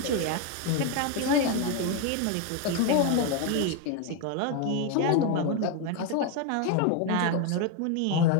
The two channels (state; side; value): different; both; correlation 0.02